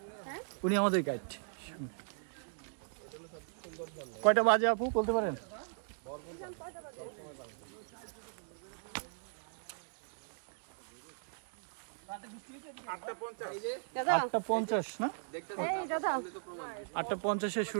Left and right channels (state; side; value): silent; left; digital silence